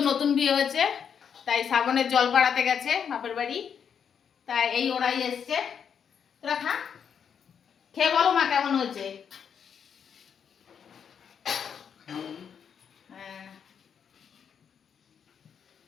নতুন বিয়ে হয়েছে, তাই শ্রাবণের জল পাড়াতে গেছে বাপের বাড়ি। তাই এই ওরাই এসছে। তোরা খা, খেয়ে বলো মা কেমন হয়েছে। হ্যাঁ,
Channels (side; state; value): right; quieter; 7.5 dB